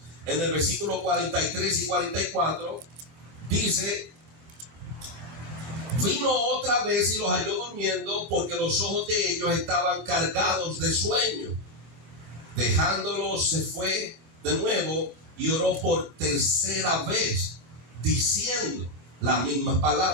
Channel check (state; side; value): late; left; 24 ms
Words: En el versículo 43 y 44 dice: vino otra vez y los halló durmiendo, porque los ojos de ellos estaban cargados de sueño. Dejándolos, se fue de nuevo y oró por tercera vez, diciendo las mismas